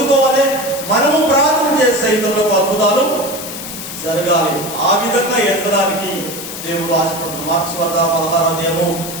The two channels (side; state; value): left; noise; hiss, 9 dB below the sound